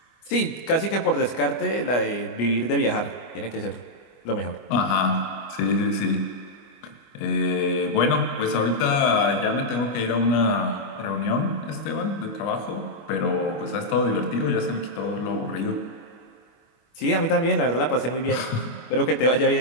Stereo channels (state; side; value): late; right; 25 ms